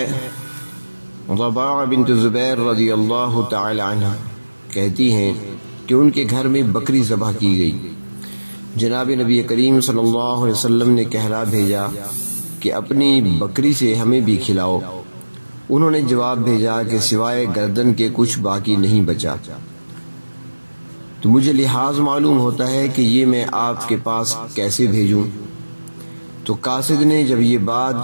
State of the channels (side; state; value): both; inverted; correlation -1.00